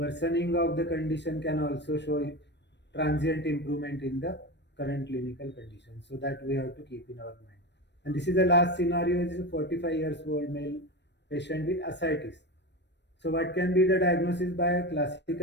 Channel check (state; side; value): late; right; 0.50 ms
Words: of the condition can also show transient improvement in the current clinical condition. So that we have to keep in our mind. And this is the last scenario. This is a 45 years old male patient with ascites. So what can be the diagnosis by a